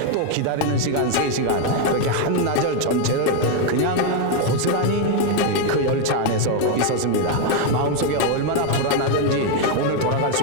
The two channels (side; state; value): both; different; correlation 0.01